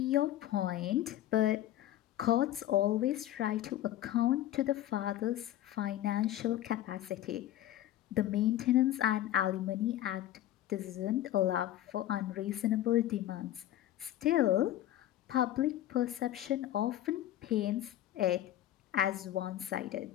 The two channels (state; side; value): quieter; right; 13.2 dB